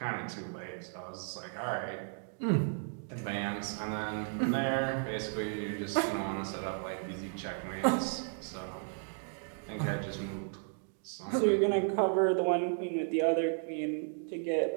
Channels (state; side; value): silent; left; 55 dB below the other